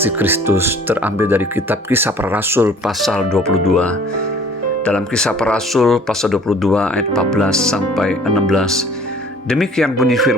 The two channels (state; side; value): normal; both; correlation 0.52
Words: Kristus, terambil dari kitab Kisah Para Rasul pasal 22. Dalam Kisah Para Rasul pasal 22 ayat 14 sampai 16, demikian bunyi